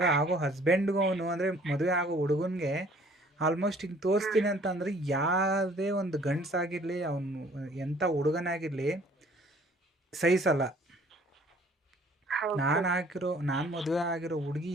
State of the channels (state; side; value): normal; both; correlation 0.56